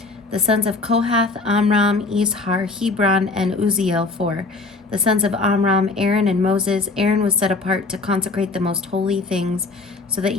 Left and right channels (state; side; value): quieter; right; 3.5 dB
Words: The sons of Kohath, Amram, Izhar, Hebron, and Uzziel 4. The sons of Amram, Aaron, and Moses. Aaron was set apart to consecrate the most holy things, so that